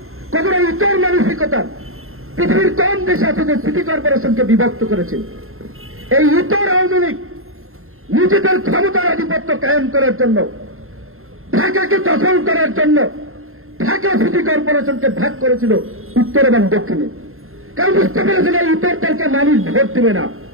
কতটা ইতর মানসিকতা পৃথিবীর কোন দেশ আছে যে সিটি কর্পোরেশনকে বিভক্ত করেছে? এই ইতর আওয়ামী লীগ নিজেদের ক্ষমতার আধিপত্য কায়েম করার জন্য, ঢাকাকে দখল করার জন্য ঢাকা সিটি কর্পোরেশনকে ভাগ করেছিল উত্তর এবং দক্ষিণে। কারণ বুঝতে পেরেছিল এই উত্তরটাকে মানুষ ভোট দেবে না।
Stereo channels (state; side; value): late; left; 0.61 ms